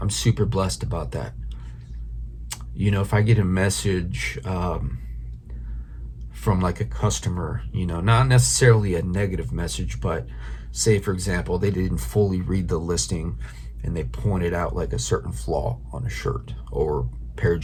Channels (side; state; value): both; identical; correlation 1.00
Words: I'm super blessed about that. If I get a message from like a customer, not necessarily a negative message, but say for example, they didn't fully read the listing and they pointed out like a certain flaw on a shirt or pair of